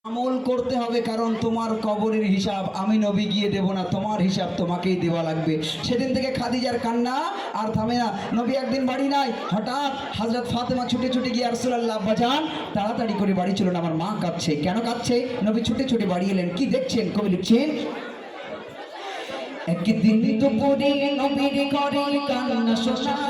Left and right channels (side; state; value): both; identical; correlation 1.00